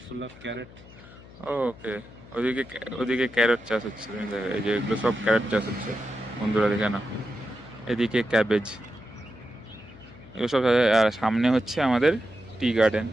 full of carrot. Okay, ওদিকে ওদিকে ক্যারট চাষ হচ্ছে। তুমি দেখো, এই যে এগুলো সব ক্যারট চাষ হচ্ছে বন্ধুরা, দেখে না। এদিকে ক্যাবেজ, এগুলো সব। আর সামনে হচ্ছে আমাদের টি গার্ডেন।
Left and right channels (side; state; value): left; noise; hum, 20 dB below the sound